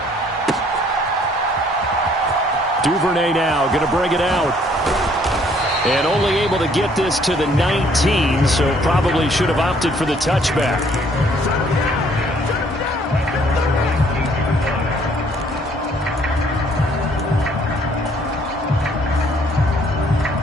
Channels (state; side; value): normal; both; correlation 0.62